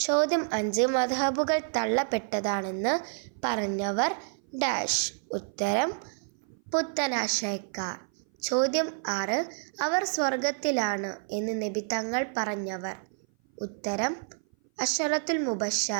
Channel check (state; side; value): silent; left; 56 dB below the other